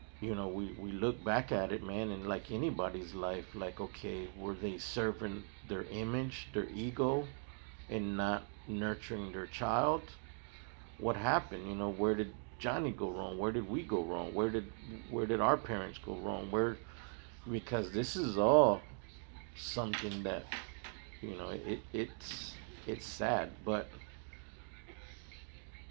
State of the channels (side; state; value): left; silent; 51 dB below the other